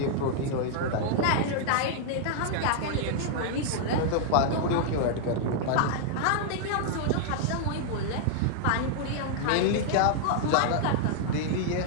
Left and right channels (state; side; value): different; both; correlation -0.01